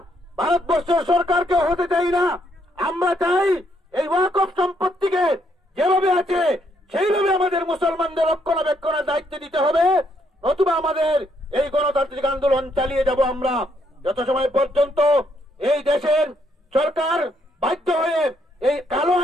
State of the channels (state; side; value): normal; both; correlation 0.73